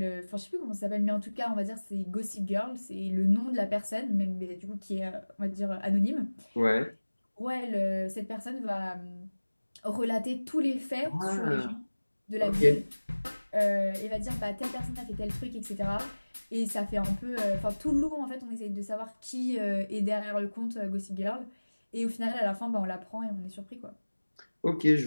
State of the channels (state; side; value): inverted; both; correlation -1.00